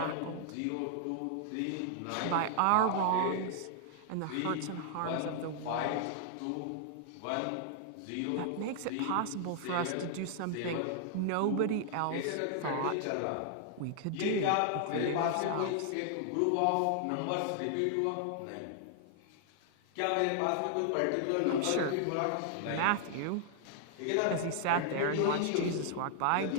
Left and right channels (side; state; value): both; different; correlation -0.01